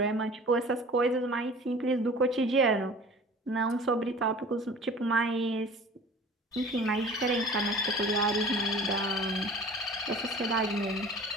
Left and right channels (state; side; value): normal; both; correlation 0.43